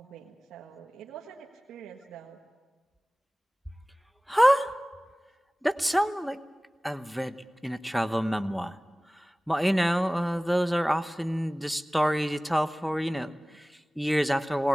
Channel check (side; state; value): both; normal; correlation 0.98